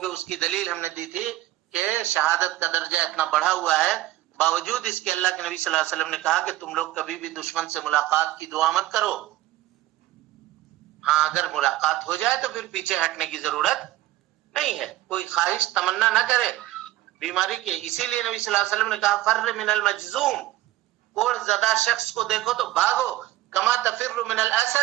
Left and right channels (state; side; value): quieter; left; 15.9 dB